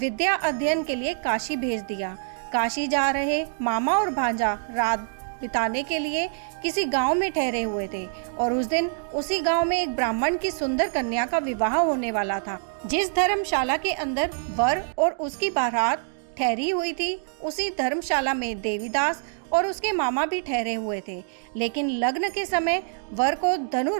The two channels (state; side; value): silent; left; digital silence